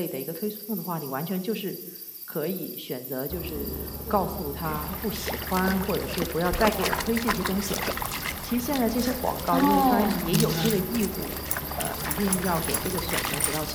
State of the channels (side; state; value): both; identical; correlation 1.00